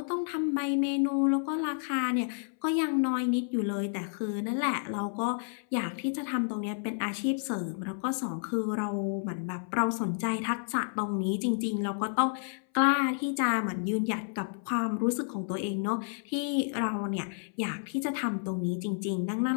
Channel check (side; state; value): right; silent; 57 dB below the other